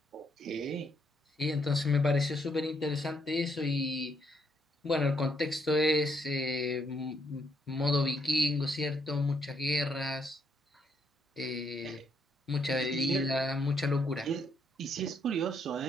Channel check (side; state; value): both; normal; correlation 0.74